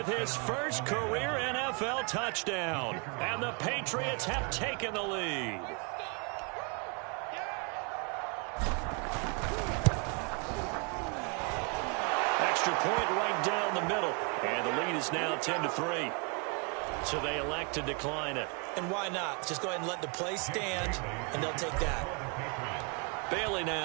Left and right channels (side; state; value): left; quieter; 34.4 dB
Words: his first career NFL touchdown. And the Patriots have taken the lead. Extra point right down the middle. And the lead is now 10-3. So they elect to decline it. And why not? Just go ahead and let the play stand, and they'll take that. Bailey